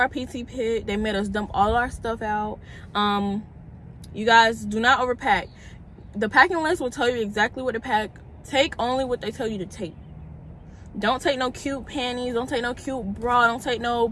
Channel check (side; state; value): both; identical; correlation 1.00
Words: PT pit. They made us dump all our stuff out. You guys, do not overpack. The packing list will tell you exactly what to pack. Take only what they tell you to take. Don't take no cute panties. Don't take no cute bra. Don't take no